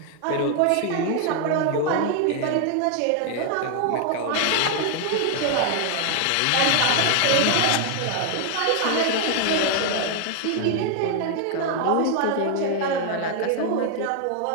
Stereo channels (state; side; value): different; both; correlation 0.00